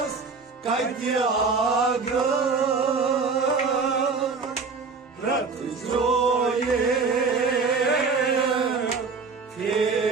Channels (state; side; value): quieter; left; 4.7 dB